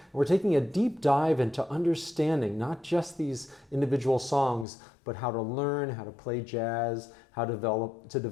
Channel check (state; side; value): drops out; right; at 4.7 s